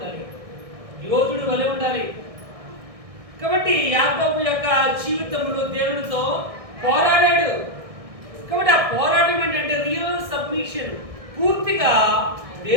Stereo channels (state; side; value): late; left; 1.6 ms